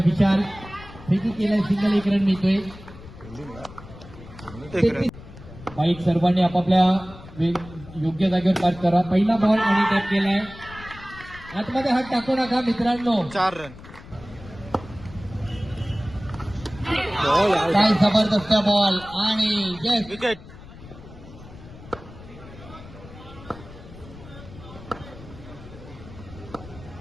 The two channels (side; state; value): left; noise; rumble, 17 dB below the sound